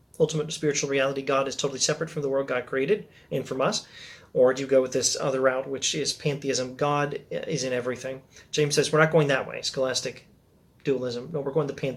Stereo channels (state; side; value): identical; both; correlation 1.00